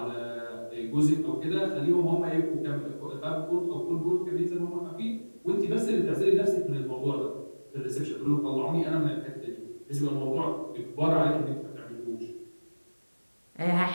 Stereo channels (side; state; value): both; inverted; correlation -1.00